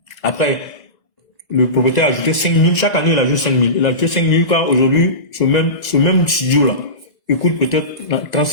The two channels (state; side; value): late; right; 1.5 ms